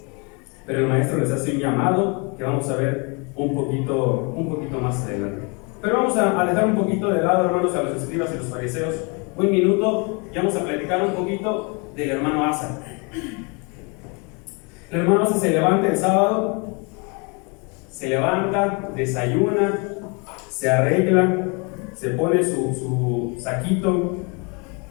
Pero el maestro les hace un llamado que vamos a ver un poquito más adelante. Pero vamos a dejar un poquito de lado, hermanos, a los escribas y los fariseos. Un minuto y vamos a platicar un poquito del hermano Asa. El hermano Asa se levanta el sábado, se levanta, desayuna, se arregla, se pone su saquito,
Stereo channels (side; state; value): right; quieter; 32.4 dB